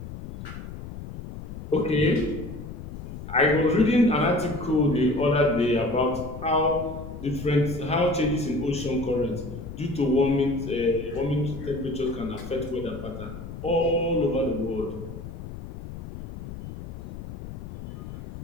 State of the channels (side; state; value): left; noise; rumble, 10 dB below the sound